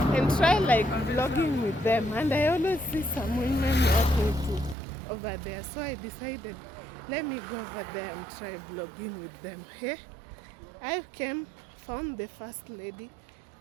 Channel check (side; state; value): left; drops out; at 4.8 s